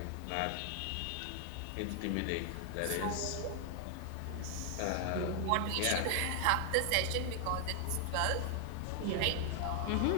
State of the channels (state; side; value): different; both; correlation 0.00